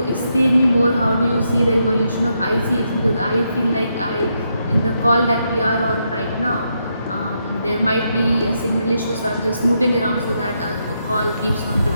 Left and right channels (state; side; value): inverted; both; correlation -0.80